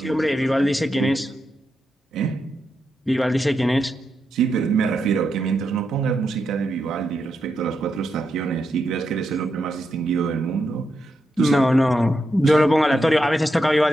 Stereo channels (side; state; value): both; normal; correlation 0.85